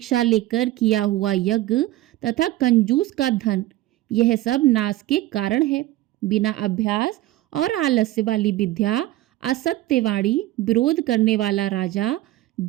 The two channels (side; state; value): left; quieter; 16.0 dB